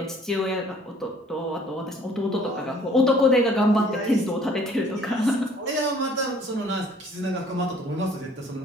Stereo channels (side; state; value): both; normal; correlation 0.56